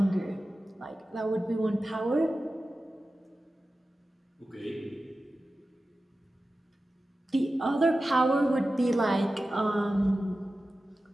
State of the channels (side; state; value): both; normal; correlation 0.94